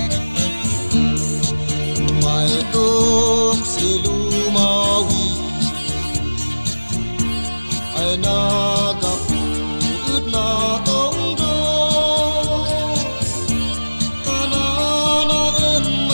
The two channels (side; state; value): both; inverted; correlation -1.00